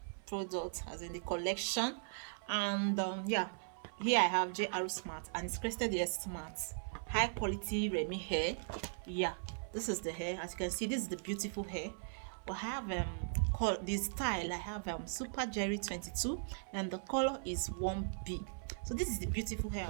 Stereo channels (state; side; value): silent; left; 52 dB below the other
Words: product, as in the collection. And yeah, here I have JR Smart and it's crested hair smart, high quality Remy hair. Yeah, this is the hair. As you can see, this is the beautiful hair. But I have this style. I have Super Jerry 22 and the color is 1B. So this is the beautiful hair